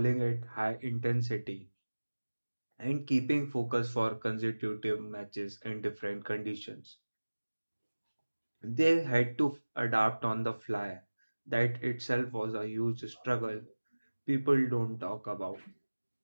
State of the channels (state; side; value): inverted; both; correlation -1.00